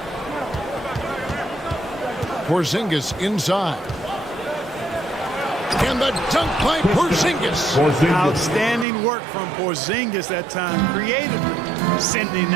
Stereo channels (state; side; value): drops out; left; at 8.8 s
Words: Porzingis inside. And the dunk by Porzingis. Outstanding work from Porzingis that time, creatively sending